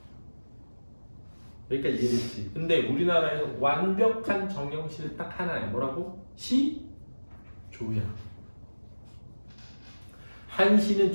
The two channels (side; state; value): both; inverted; correlation -1.00